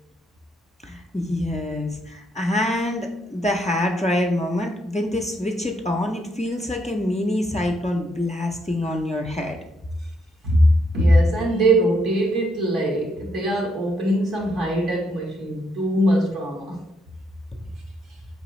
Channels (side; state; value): both; normal; correlation 0.75